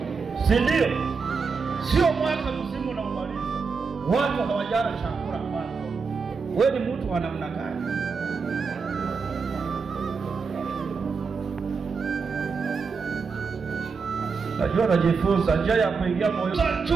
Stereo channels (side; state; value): left; quieter; 5.1 dB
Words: si ndio? Sio mwaka mzima na umaliza watu hawajala chakula kwako. Wewe ni mtu wa namna gani? Najua najifunza njia ya kuingia moyo.